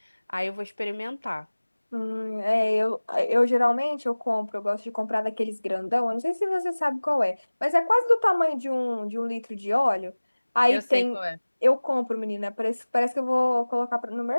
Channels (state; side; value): inverted; both; correlation -1.00